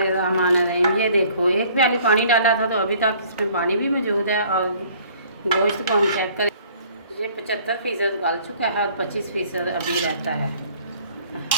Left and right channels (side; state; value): both; inverted; correlation -0.56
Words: ये देखो, 1 प्याली पानी डाला था तो अभी तक इसमें पानी भी मौजूद है, और गोश्त को हम चेक करें, ये 75% गल चुका है और 25% अभी रहता है।